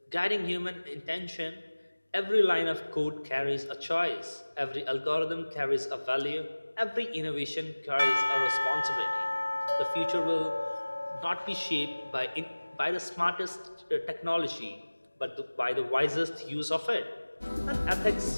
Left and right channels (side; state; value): both; inverted; correlation -1.00